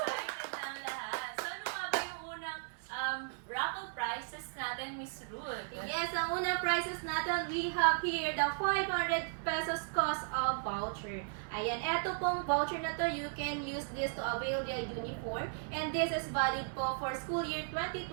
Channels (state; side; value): silent; left; 54 dB below the other